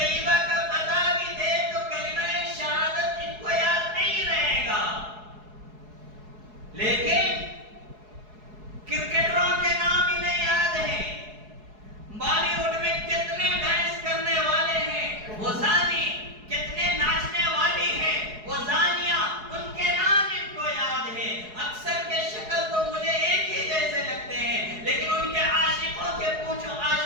کا پتہ بھی دے تو کلمہ شہادت ان کو یاد نہیں رہے گا، لیکن کرکٹروں کے نام انہیں یاد ہیں، بالی ووڈ میں کتنے ڈانس کرنے والے ہیں وہ زانی، کتنے ناچنے والی ہیں وہ زانیہ، ان کے نام ان کو یاد ہے۔ اکثر کے شکل تو مجھے ایک ہی جیسے لگتے ہیں، لیکن ان کے عاشقوں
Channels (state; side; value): late; left; 4.7 ms